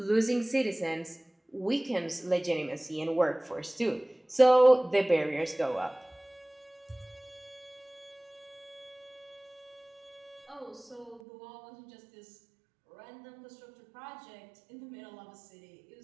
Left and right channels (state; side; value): drops out; left; at 11.2 s